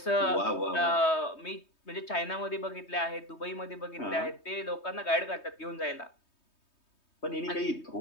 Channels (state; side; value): late; right; 3.2 ms